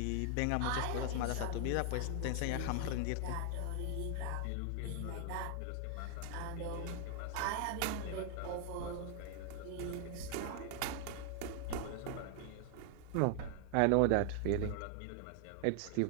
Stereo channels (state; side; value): different; both; correlation 0.00